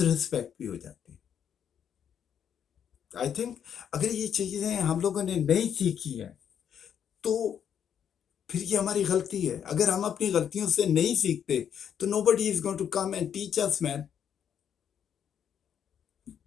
ریسپیکٹ بھی ہو جاتے ہیں. آئی تھنک اگر یہ چیزیں ہم لوگوں نے نہیں سیکھی ہیں تو پھر یہ ہماری غلطی ہے. اگر ہم اپنی غلطیوں سے نہیں سیکھتے تو nobody is going to come and teach us, man.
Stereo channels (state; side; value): quieter; right; 8.6 dB